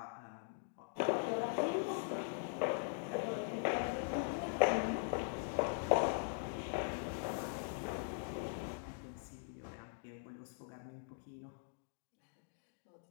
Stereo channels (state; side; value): silent; right; digital silence